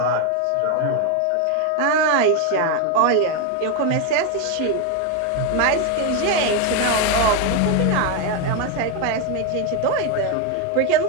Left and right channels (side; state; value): both; different; correlation 0.02